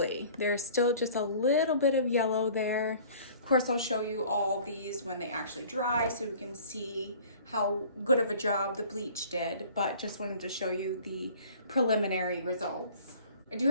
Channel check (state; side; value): inverted; both; correlation -0.49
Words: There's still just a little bit of yellow there. Of course, I'll show you all these when they actually dry so you can see how good of a job the bleach did, but just wanted to show you the preliminary results. I do